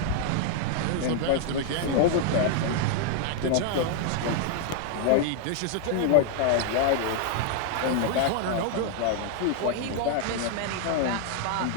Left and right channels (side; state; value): both; different; correlation 0.00